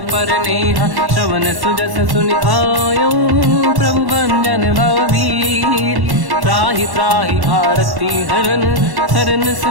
पर नेहा। श्रवण सुजस सुनि आयो प्रभु भंजन भवबीर। त्राहि त्राहि आरती हरन शरण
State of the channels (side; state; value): left; late; 1.1 ms